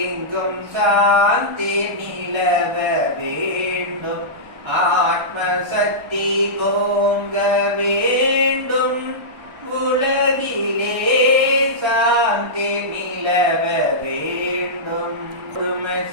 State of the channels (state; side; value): late; left; 1.4 ms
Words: எங்கும் சாந்தி நிலவ வேண்டும் ஆத்ம சக்தி ஓங்க வேண்டும் உலகிலே சாந்தி நிலவ வேண்டும்